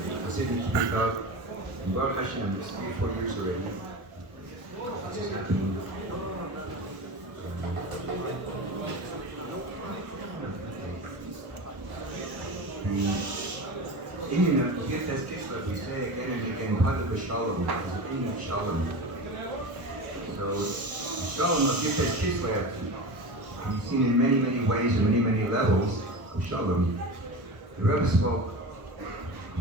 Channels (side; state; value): left; late; 1.2 ms